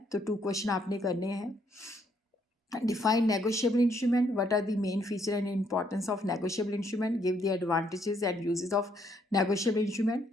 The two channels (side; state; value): both; normal; correlation 0.70